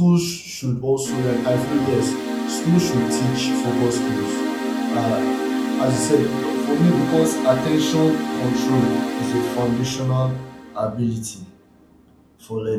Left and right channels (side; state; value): both; identical; correlation 1.00